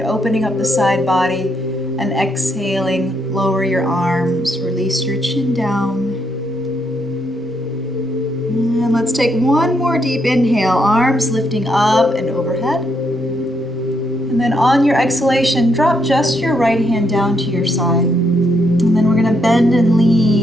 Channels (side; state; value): both; normal; correlation 0.76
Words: up the side body, and exhaling, lower your arms, release your chin down. And let's take one more deep inhale, arms lifting up and overhead. And then on your exhalation, drop just your right hand down to your side. And then we're gonna bend and